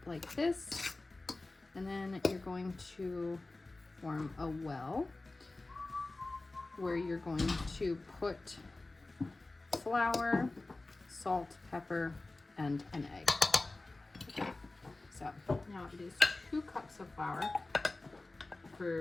like this, and then you're going to form a well where you're going to put flour, salt, pepper, and an egg. Okay. So now it is 2 cups of flour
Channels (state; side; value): quieter; right; 3.1 dB